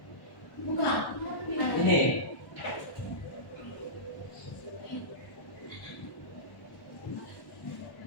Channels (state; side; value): late; right; 1.1 ms